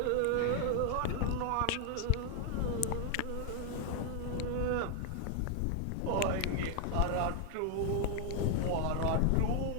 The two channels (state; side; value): different; both; correlation 0.00